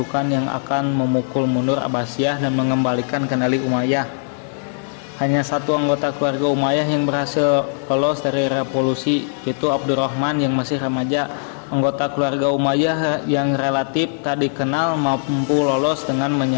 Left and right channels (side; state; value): right; silent; digital silence